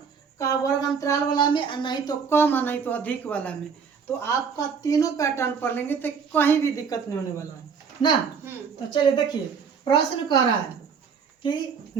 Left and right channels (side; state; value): left; quieter; 6.1 dB